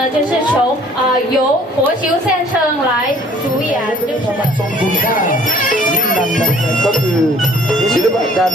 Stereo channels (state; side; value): normal; both; correlation 0.56